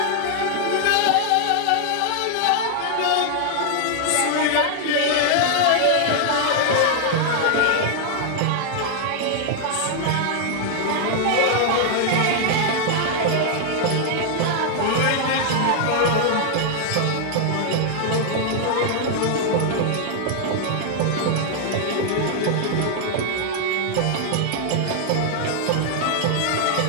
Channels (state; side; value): different; both; correlation 0.00